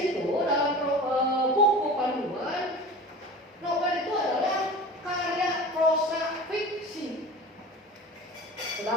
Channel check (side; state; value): both; normal; correlation 0.36